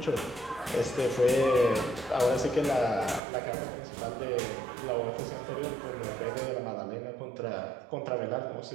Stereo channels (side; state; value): left; drops out; at 3.2 s